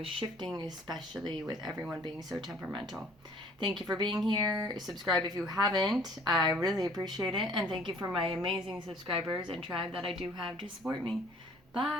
shifting, especially with everyone being so temperamental. Thank you for being here. Subscribe if you haven't. I really appreciate it. And thank you for my amazing subscribers and tribe that I do have to support me.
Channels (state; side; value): noise; right; rumble, 29 dB below the sound